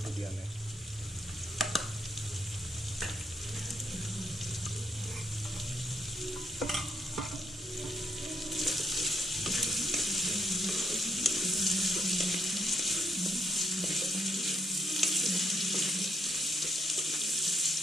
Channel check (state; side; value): normal; both; correlation 0.74